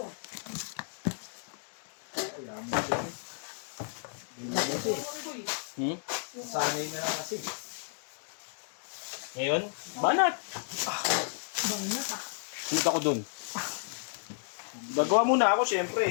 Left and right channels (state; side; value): silent; right; digital silence